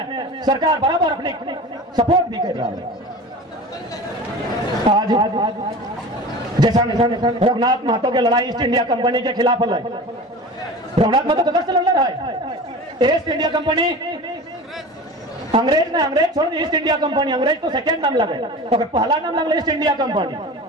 सरकार बराबर अपनी सपोर्ट भी कर रहा है। आज जैसा रघुनाथ महतो की लड़ाई ईस्ट इंडिया कंपनी के खिलाफ है, रघुनाथ महतो कदर से लड़ रहा है। ईस्ट इंडिया कंपनी अंग्रेज ने, अंग्रेज छोड़ ईस्ट इंडिया कंपनी, अंग्रेज तो सेकेंड नाम लगे, तो पहला नाम लगे ईस्ट इंडिया कंपनी।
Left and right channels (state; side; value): normal; both; correlation 0.34